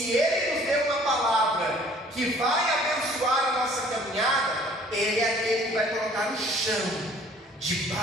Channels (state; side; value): normal; both; correlation 0.54